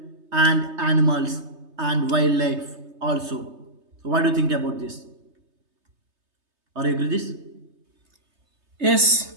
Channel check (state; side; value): late; left; 3.3 ms